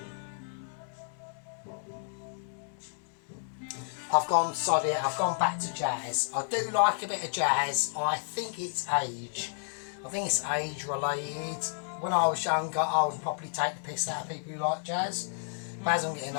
I've gone back to jazz. I do like a bit of jazz. I think it's age. I think it's age related. When I was younger, I would probably take the piss out of people who like jazz. But as I'm getting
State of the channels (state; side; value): silent; right; digital silence